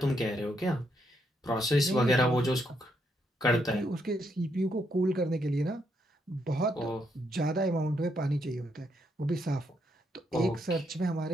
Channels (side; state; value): both; normal; correlation 0.77